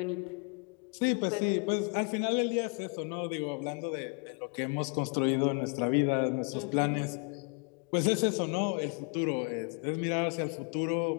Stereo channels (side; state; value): right; quieter; 37.6 dB